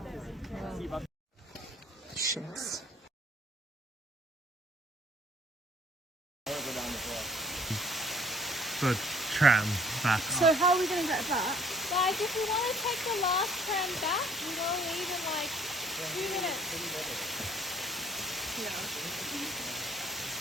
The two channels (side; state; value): both; normal; correlation 0.57